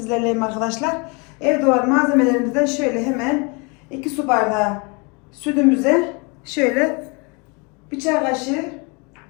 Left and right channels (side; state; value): right; quieter; 30.8 dB